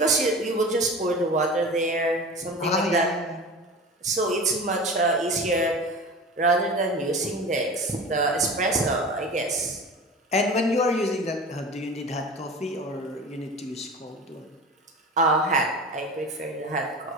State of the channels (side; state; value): both; normal; correlation 0.34